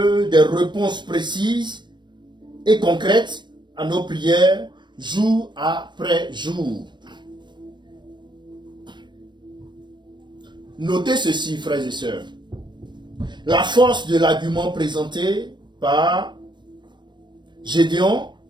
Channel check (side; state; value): left; late; 0.22 ms